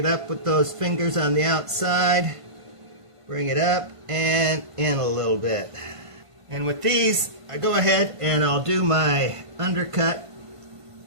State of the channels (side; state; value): left; late; 1.5 ms